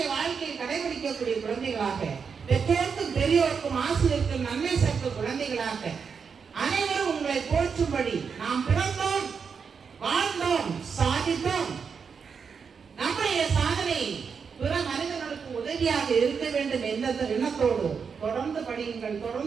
வாழ்க்கையை கடைபிடிக்கக்கூடிய குழந்தைகளாக, பெற்றோருக்கும் பெரியோருக்கும் ஆசிரியருக்கும் நன்மை சேர்க்கும் குழந்தைகளாக, அனைவரும் உங்களை போற்றும்படி நாம் பிறந்தோம், வாழ்ந்தோம், சாதித்தோம். நம்முடைய சாதனை பிற மனிதர்களுக்கு உதவியாக இருக்க வேண்டும் என்ற எண்ணத்தோடு தொடர்ந்து படியுங்கள்,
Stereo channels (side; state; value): left; quieter; 6.0 dB